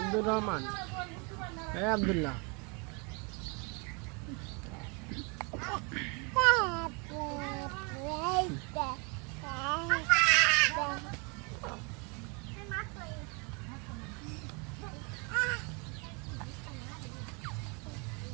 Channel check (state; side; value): quieter; left; 32.5 dB